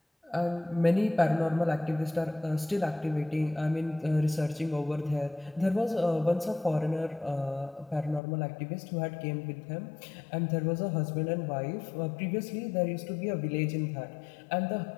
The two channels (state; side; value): drops out; right; at 8.2 s